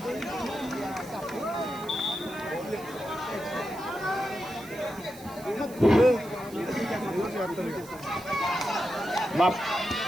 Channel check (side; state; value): right; noise; hiss, 19 dB below the sound